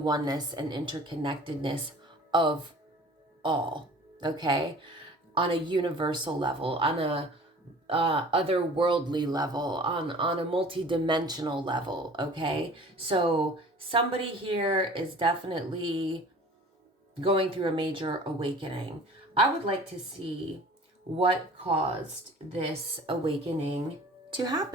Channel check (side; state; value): both; normal; correlation 0.45